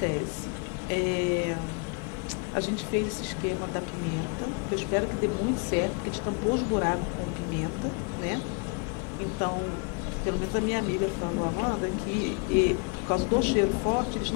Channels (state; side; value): quieter; right; 34.3 dB